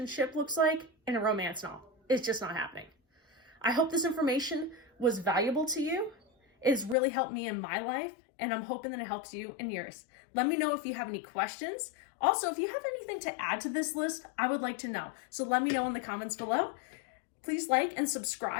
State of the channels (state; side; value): drops out; right; at 7.0 s